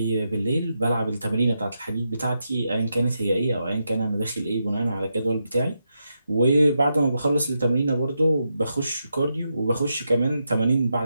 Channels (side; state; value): both; inverted; correlation -0.85